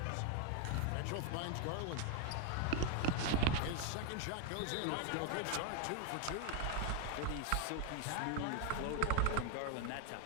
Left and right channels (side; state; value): both; different; correlation 0.00